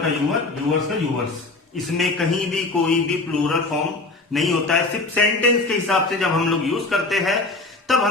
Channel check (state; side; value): quieter; right; 3.4 dB